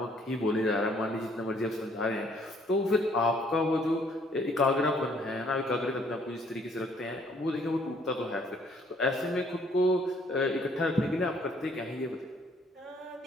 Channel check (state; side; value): normal; both; correlation 0.63